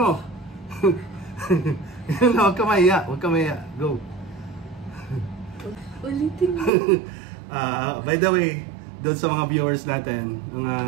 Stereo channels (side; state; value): left; drops out; at 6.7 s